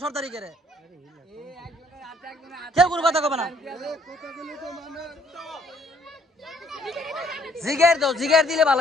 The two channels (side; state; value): both; normal; correlation 0.64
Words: সরকারি করে কেউ কোনো কথা কবে না। জিগের দাও, জিগের দিলে